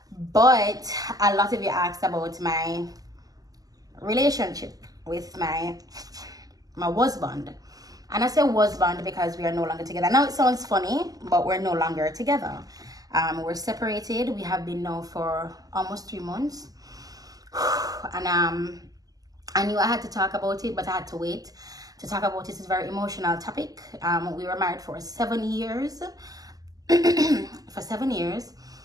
But a lot of you asked about my relationship with my husband. And I say husband because we are no longer together. Now it sounds funny, but we're no longer together. We're separated. We have been now for almost 3 months. And I knew I had to talk about it, but I had to wait to talk about it. It's a very emotional topic. We were married for 7 years. For 7 years.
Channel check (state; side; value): late; left; 0.17 ms